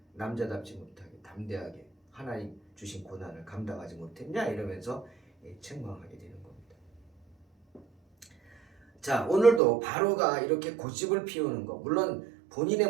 남자답지 못하게 담대하게 하나님 주신 고난을 감당하지 못했냐? 이러면서 책망하게 되는 겁니다. 자, 오늘도 바로가 이렇게 고집을 피우는 거, 물론 본인의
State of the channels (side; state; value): left; drops out; at 9.6 s